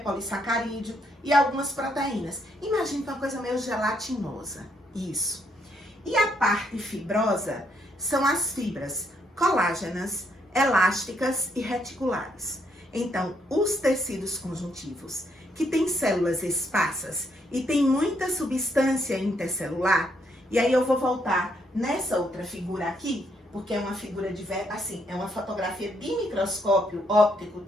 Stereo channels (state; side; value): normal; both; correlation 0.74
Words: e algumas proteínas. Imagina que é uma coisa meio gelatinosa, isso. E a parte fibrosa são as fibras colágenas, elásticas e reticulares. Então, os tecidos conjuntivos, que têm células esparsas e tem muita substância intercelular, e aí eu vou voltar nessa outra figura aqui, porque é uma figura assim, é uma fotografia de microscópio óptico,